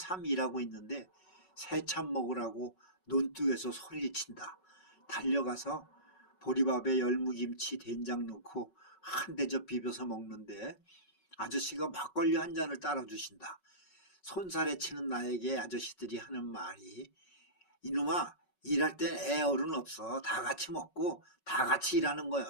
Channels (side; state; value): right; late; 5.4 ms